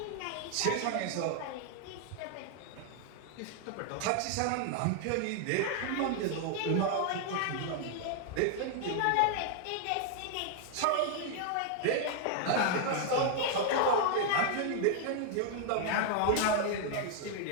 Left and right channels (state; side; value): different; both; correlation 0.00